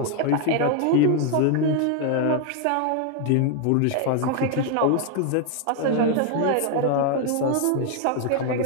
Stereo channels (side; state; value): both; different; correlation 0.01